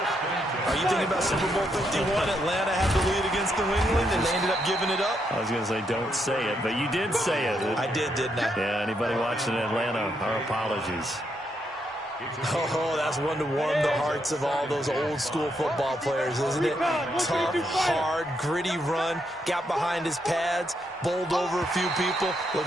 Are you thinking about Super Bowl 51? Atlanta had the lead against New England, and they ended up giving it up? I was going to say, don't say it, but you did say it. I did, didn't I? Yeah, anybody watching Atlanta, our apologies. Oh, that's one to warm the hearts of all those old-school football players, isn't it? Tough, hard, gritty run, got behind his pads, bowled over a few people. Look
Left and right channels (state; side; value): normal; both; correlation 0.78